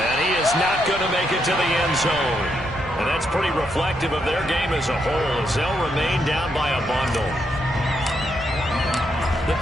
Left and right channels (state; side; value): normal; both; correlation 0.79